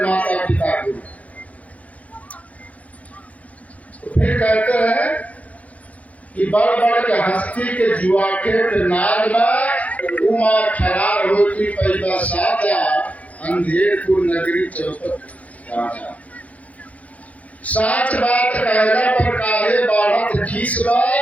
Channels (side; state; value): right; late; 0.068 ms